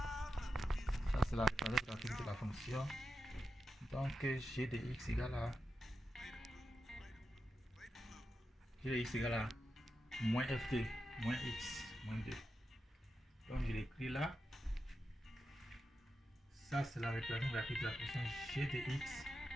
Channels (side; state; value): both; normal; correlation 0.88